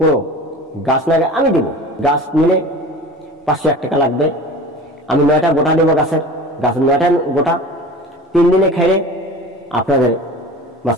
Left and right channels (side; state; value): both; normal; correlation 0.38